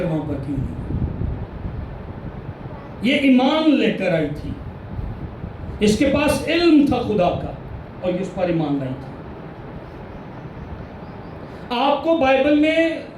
وہاں پر کیوں نہیں؟ یہ ایمان لے کر آئی تھی, اس کے پاس علم تھا خدا کا اور یہ اس پر ایمان لائی تھی. آپ کو بائبل میں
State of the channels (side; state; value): both; identical; correlation 1.00